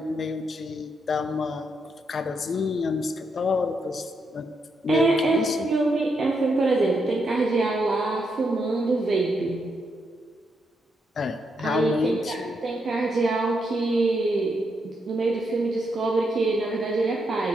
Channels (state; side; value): normal; both; correlation 0.80